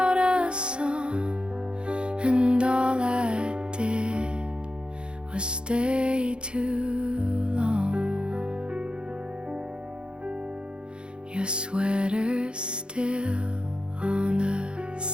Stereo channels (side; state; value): left; late; 0.053 ms